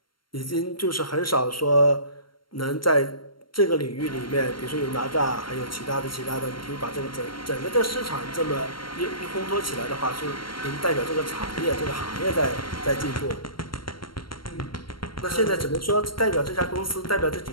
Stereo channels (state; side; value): late; right; 0.73 ms